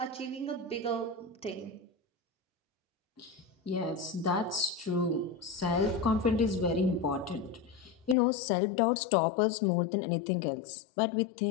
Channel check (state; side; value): drops out; right; at 8.2 s